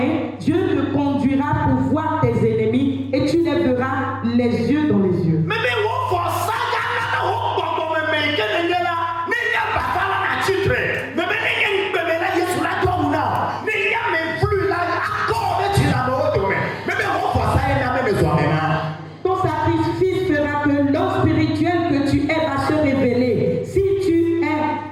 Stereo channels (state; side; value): identical; both; correlation 1.00